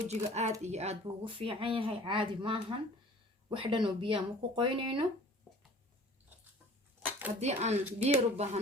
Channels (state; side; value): normal; both; correlation 0.47